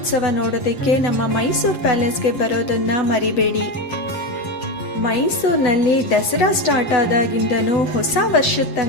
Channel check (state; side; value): late; right; 8.1 ms